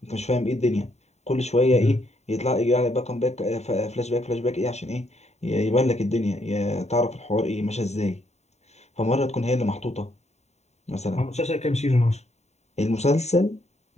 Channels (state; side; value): late; right; 0.32 ms